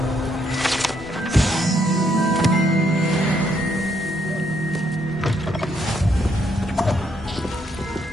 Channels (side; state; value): both; normal; correlation 0.73